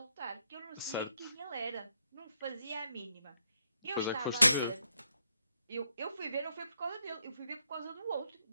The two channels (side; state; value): both; inverted; correlation -0.78